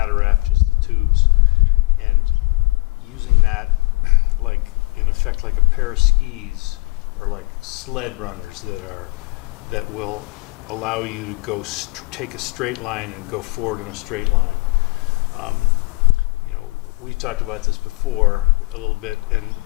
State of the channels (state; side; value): quieter; right; 24.8 dB